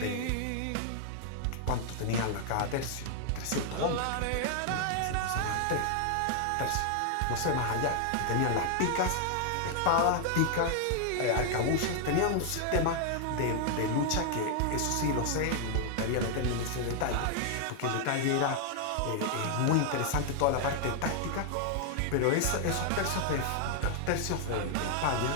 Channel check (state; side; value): different; both; correlation 0.00